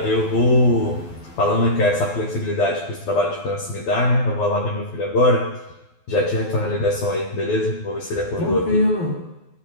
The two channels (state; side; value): late; right; 12 ms